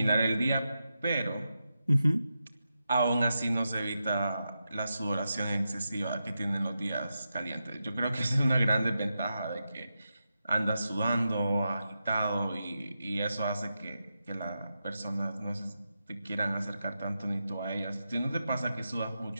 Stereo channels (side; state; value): both; inverted; correlation -0.88